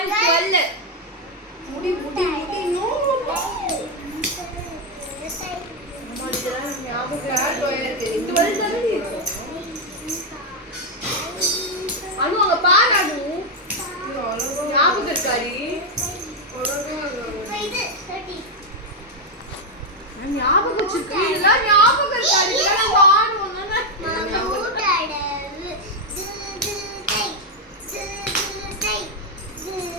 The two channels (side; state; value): both; normal; correlation 0.03